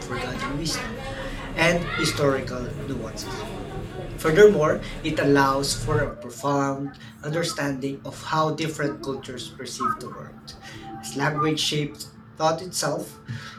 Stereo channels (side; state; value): both; identical; correlation 1.00